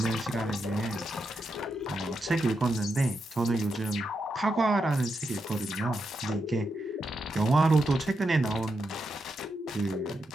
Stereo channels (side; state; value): both; normal; correlation 0.85